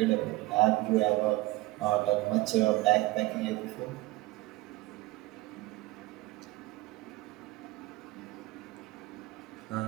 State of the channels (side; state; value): left; quieter; 19.3 dB